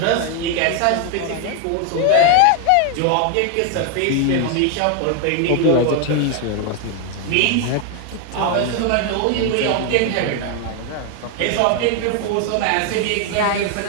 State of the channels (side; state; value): both; different; correlation 0.00